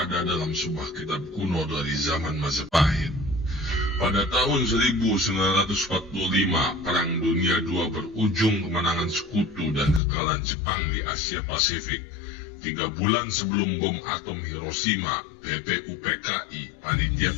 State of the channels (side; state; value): right; drops out; at 10.0 s